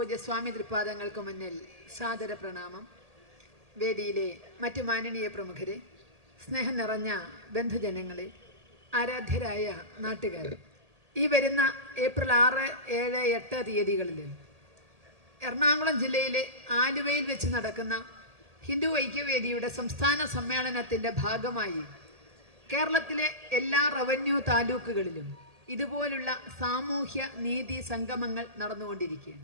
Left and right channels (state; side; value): late; left; 1.8 ms